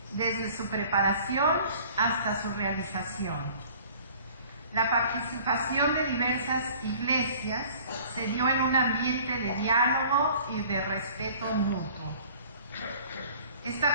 desde su preparación hasta su realización. La participación de diversas iglesias se dio en un ambiente de diálogo y de respeto mutuo.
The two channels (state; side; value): inverted; both; correlation -0.50